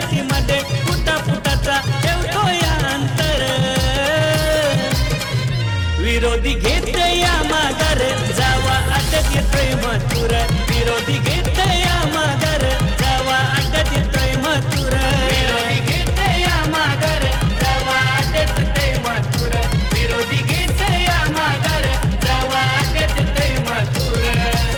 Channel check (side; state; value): both; identical; correlation 1.00